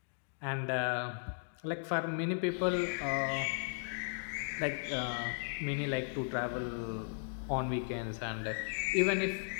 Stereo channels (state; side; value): silent; right; digital silence